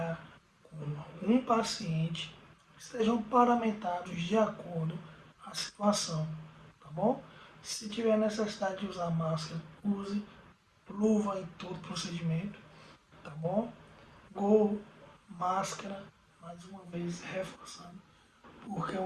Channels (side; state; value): both; identical; correlation 1.00